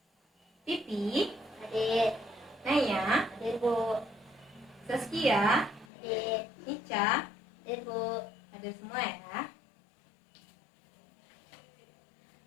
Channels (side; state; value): right; drops out; at 5.9 s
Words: Pipi, Adik, Naya, hadir, Bu. Saskia, Adik, Ica, hadir, Bu. ada semua ya.